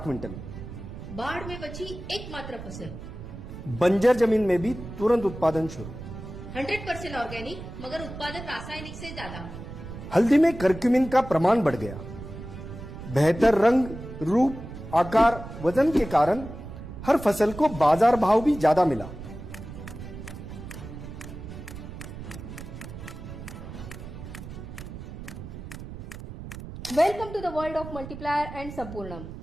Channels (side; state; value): right; noise; rumble, 11 dB below the sound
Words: बाढ़ में बची एकमात्र फसल। बंजर जमीन में भी तुरंत उत्पादन शुरू। 100% ऑर्गेनिक मगर उत्पादन रासायनिक से ज्यादा। हल्दी में करक्यूमिन का प्रमाण बढ़ गया। बेहतर रंग, रूप, आकार, वजन के कारण हर फसल को बाजार भाव भी ज्यादा मिला। Welcome to the world of multiplier and Sampurnam.